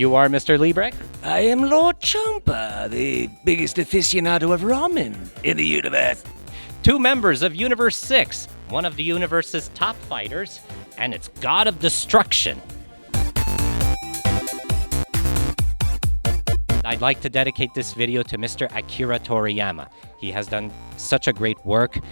are Mr. Liebrecht? I am Lord Champa, the biggest aficionado of ramen in the universe. Two members of Universe 6, one of the universe's top fighters, and its god of destruction. I'd like to dedicate this video to Mr. Akira Toriyama. He has done such a great work,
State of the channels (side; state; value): both; inverted; correlation -1.00